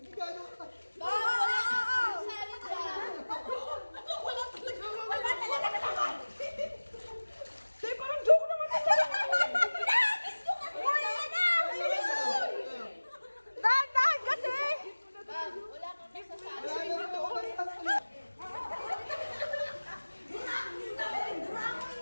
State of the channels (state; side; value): inverted; both; correlation -1.00